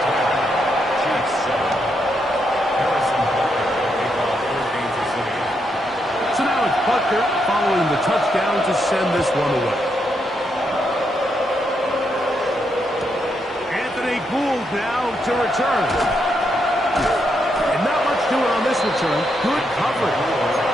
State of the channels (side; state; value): both; normal; correlation 0.80